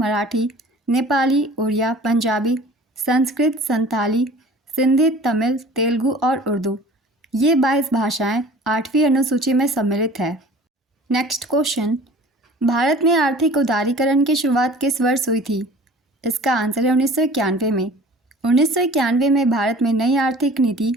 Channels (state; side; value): normal; both; correlation 0.45